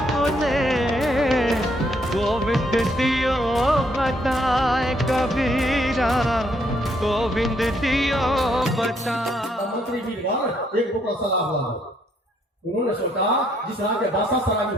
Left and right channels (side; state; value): both; normal; correlation 0.70